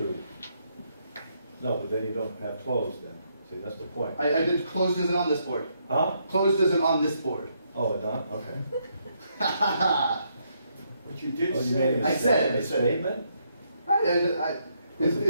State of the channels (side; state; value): both; inverted; correlation -0.75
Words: No, but then you don't have closed then. See, that's the point. I did, closed isn't on this board. Huh? Closed isn't on this board. Oh, it's not? Okay. But you did Oh, you say. made I said- a statement? Is